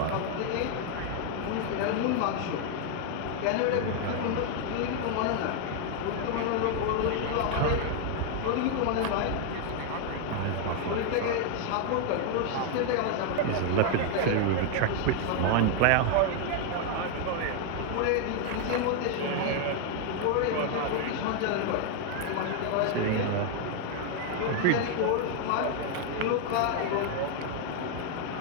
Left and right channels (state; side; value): different; both; correlation 0.00